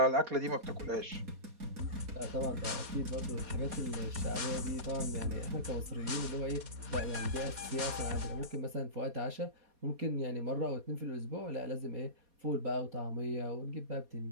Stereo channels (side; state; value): left; late; 4.2 ms